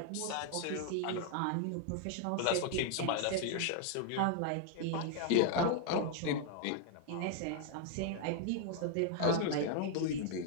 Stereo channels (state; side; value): different; both; correlation 0.00